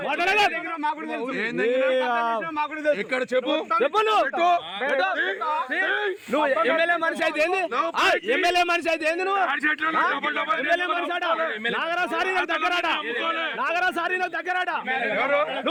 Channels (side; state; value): both; identical; correlation 1.00